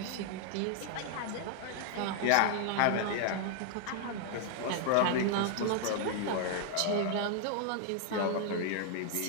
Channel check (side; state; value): both; different; correlation 0.00